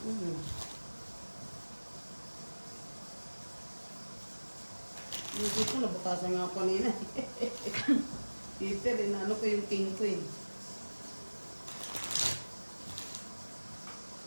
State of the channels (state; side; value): inverted; both; correlation -1.00